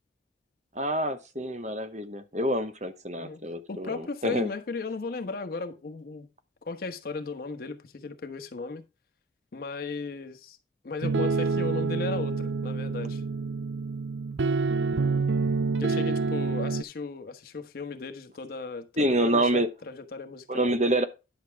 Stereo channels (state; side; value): normal; both; correlation 0.35